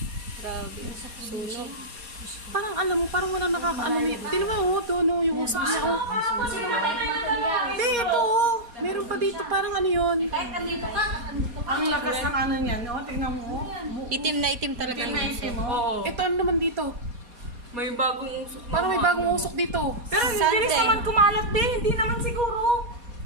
Grabe. Sunog. Parang alam mo, parang walang nakakaano. Tingnan mo, oh, doon, oh, yung usok niya, oh. Hindi, ito, oh. Meron pa dito, parang ano yun. Kahit andito ka, andito ka. Ang lakas ng ano niyan, no? Tingnan mo. Itim na itim talaga Itim yung na uso. itim, mo. Oo. Ito, ano naman dito? May bagong usok. na Parang may mga bagong ano. usok dito. Pero hindi rin Sunday. naman kumalat din. Hindi naman siguro.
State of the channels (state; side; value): late; left; 4.2 ms